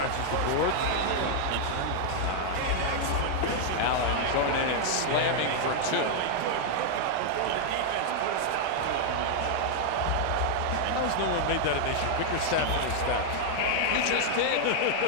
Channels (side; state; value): both; different; correlation -0.01